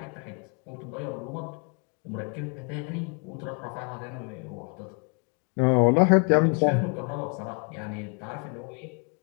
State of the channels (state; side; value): quieter; right; 37.2 dB